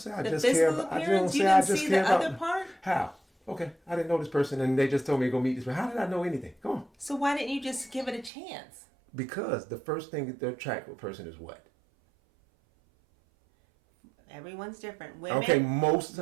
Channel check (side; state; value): left; drops out; at 8.3 s